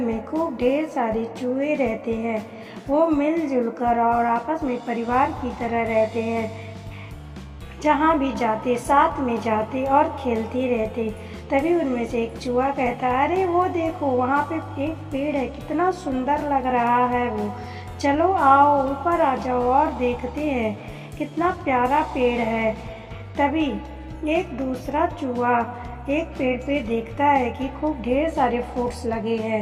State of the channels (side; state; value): both; identical; correlation 1.00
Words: खूब ढेर सारे चूहे रहते हैं। वो मिलजुल कर और आपस में परिवार की तरह रहते हैं। जहाँ भी जाते साथ में जाते और खेलते रहते। तभी उनमें से एक चूहा कहता, अरे वो देखो, वहाँ पे एक पेड़ है, कितना सुंदर लग रहा है वो। चलो आओ ऊपर आ जाओ और देखते हैं कितना प्यारा पेड़ है। तभी एक दूसरा चूहा एक पेड़ पे देखता है कि खूब ढेर सारे फ्रूट्स लगे हैं।